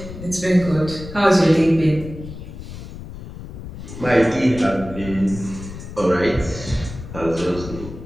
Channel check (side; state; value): left; noise; rumble, 12 dB below the sound